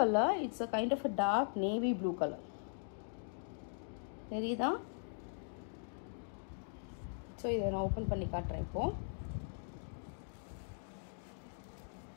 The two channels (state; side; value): silent; right; digital silence